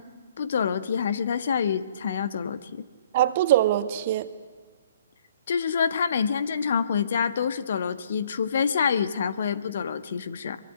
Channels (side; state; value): both; inverted; correlation -0.60